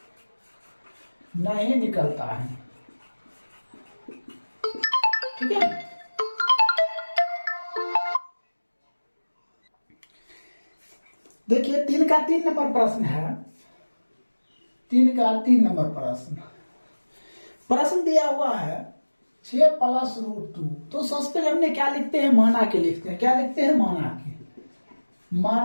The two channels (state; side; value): inverted; both; correlation -1.00